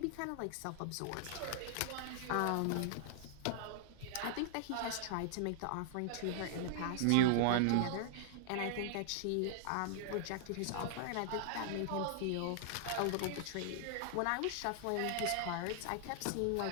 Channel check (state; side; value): different; both; correlation -0.01